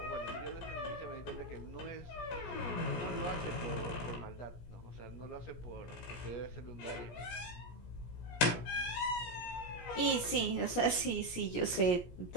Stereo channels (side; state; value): right; late; 17 ms